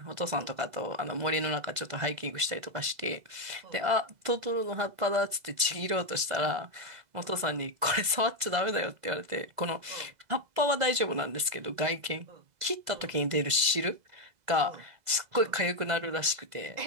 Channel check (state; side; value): late; left; 2.0 ms